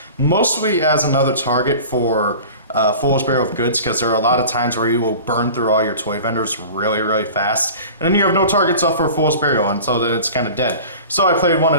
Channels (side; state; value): both; inverted; correlation -0.39